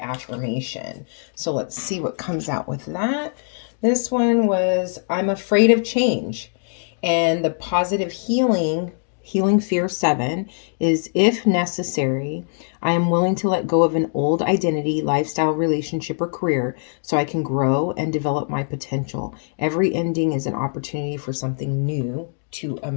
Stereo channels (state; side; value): silent; right; digital silence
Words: So let's see what comes out with that. This one was I'm afraid of change. And the positive healing fear 7 is if necessary, I am willing to let go of an old identity, lifestyle, relationship, or career so I can grow and develop my potential. Every ending is an opportunity for something new to